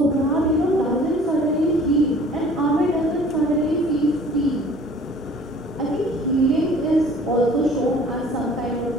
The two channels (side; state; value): both; normal; correlation 0.50